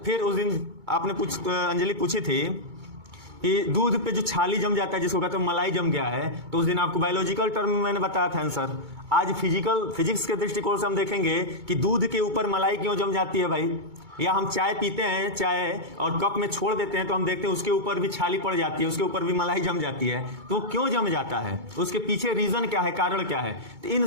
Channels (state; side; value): late; left; 2.2 ms